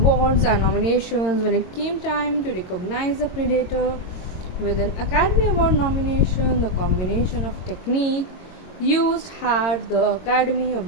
and nominations when it came time to recognize the Predator with an Academy Award nomination. The combination of technique used had the Academy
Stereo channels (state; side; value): late; right; 22 ms